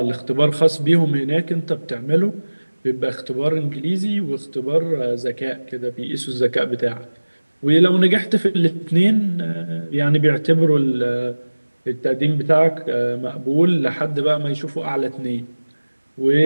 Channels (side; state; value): both; inverted; correlation -1.00